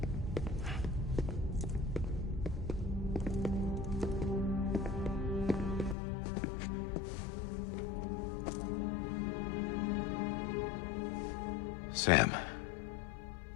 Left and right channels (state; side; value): drops out; right; at 6.0 s